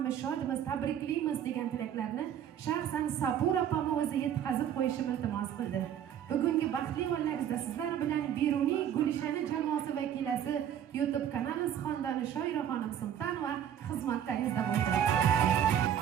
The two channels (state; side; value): quieter; left; 9.7 dB